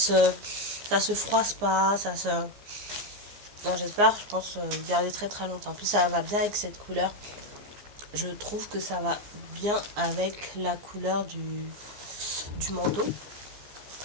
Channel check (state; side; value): late; left; 15 ms